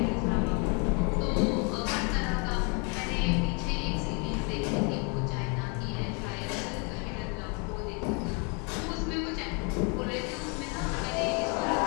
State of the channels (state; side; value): quieter; right; 33.4 dB